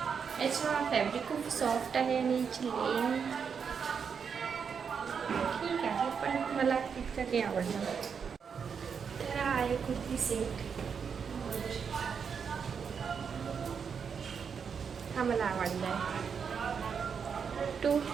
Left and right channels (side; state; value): left; quieter; 6.5 dB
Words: याचा फॅब्रिक खूप सॉफ्ट आहे आणि याची लेंथ ठीक आहे, पण मला इतकं काही आवडलं नाही. तर हा आहे कुर्ती सेट. हा मला आवडला आहे.